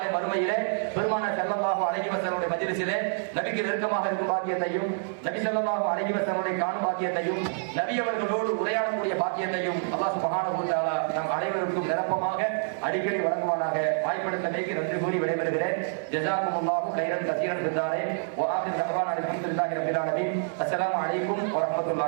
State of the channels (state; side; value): silent; left; 60 dB below the other